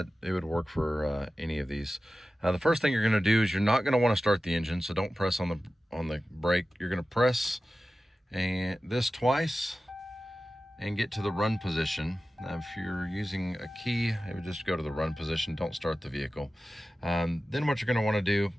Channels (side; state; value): both; normal; correlation 0.95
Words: it would work for any of these. The first thing you're going to do is you're not going to want to start the engine, so don't press on the brake. You're going to press this twice and get to the run position. Now, if you're using a key, it would just go to the run position. Don't start the vehicle. Then what you're going to want to do